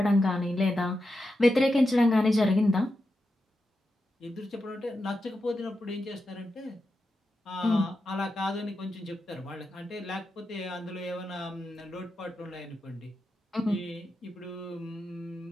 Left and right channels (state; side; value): normal; both; correlation 0.88